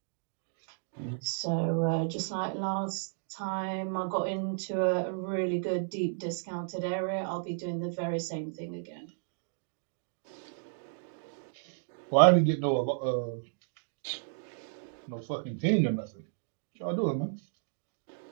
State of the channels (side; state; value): left; silent; digital silence